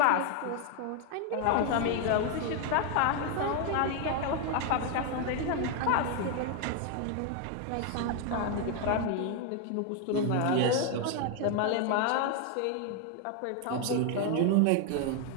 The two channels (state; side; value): different; both; correlation 0.01